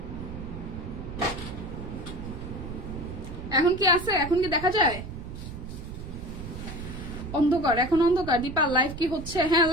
এখন কি আছে? এখন কি দেখা যায়? অন্ধকার, এখন অন্ধকার। দীপা, লাইভ কি হচ্ছে? হ্যাঁ,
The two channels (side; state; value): right; noise; rumble, 9 dB below the sound